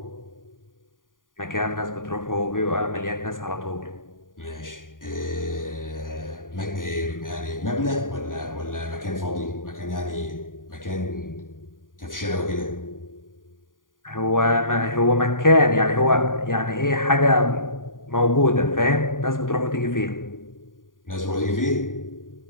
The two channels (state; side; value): late; right; 0.89 ms